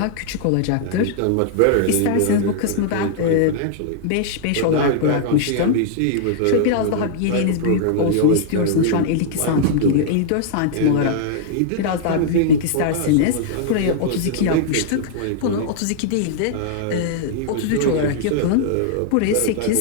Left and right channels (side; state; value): both; different; correlation -0.01